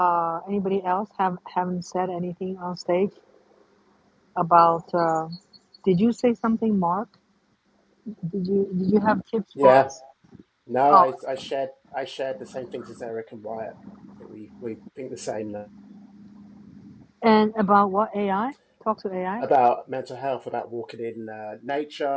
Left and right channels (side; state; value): both; identical; correlation 1.00